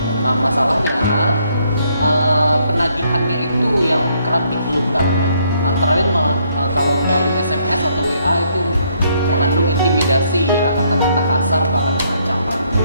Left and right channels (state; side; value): inverted; both; correlation -0.70